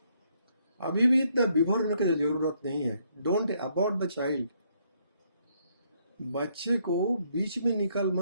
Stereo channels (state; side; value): inverted; both; correlation -0.71